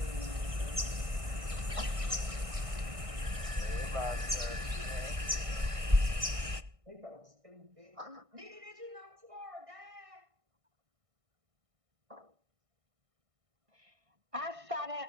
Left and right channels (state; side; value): late; left; 1.6 ms